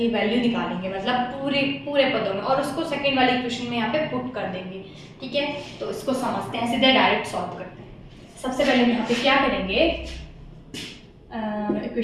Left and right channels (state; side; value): identical; both; correlation 1.00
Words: वैल्यू निकालेंगे, मतलब पूरे पदों में, और उसको सेकंड वाली इक्वेशन में यहाँ पे पुट कर देंगे, ठीक है। तो इसको समझते हैं, सीधे डायरेक्ट सॉल्व करते हैं। सबसे पहले हम यहाँ पे क्या करेंगे,